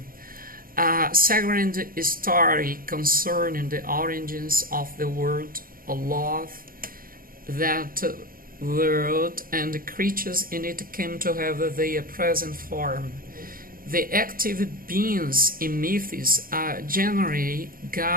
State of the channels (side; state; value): left; late; 0.42 ms